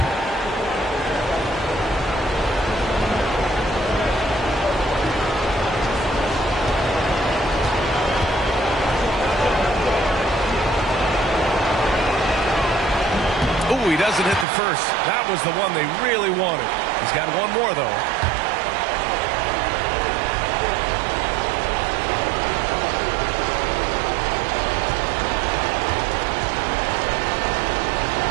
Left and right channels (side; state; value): left; drops out; at 14.5 s